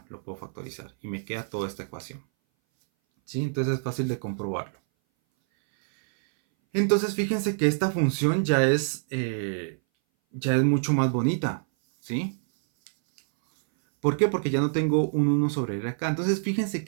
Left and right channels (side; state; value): left; silent; 59 dB below the other